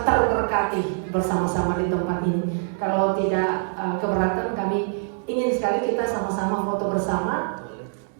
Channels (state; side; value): silent; left; digital silence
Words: terberkati bersama-sama di tempat ini. Kalau tidak keberatan, kami ingin sekali kita sama-sama foto bersama.